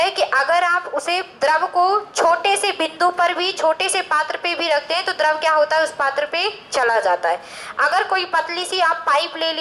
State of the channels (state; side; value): identical; both; correlation 1.00